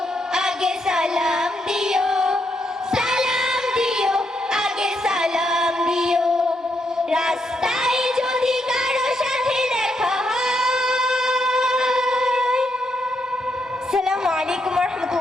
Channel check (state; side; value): normal; both; correlation 0.78